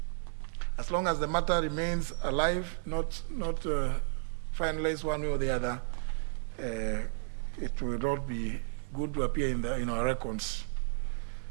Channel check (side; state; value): left; silent; 56 dB below the other